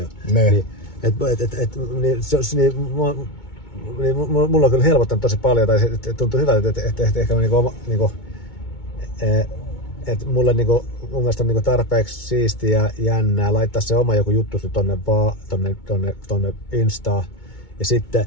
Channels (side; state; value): right; late; 2.2 ms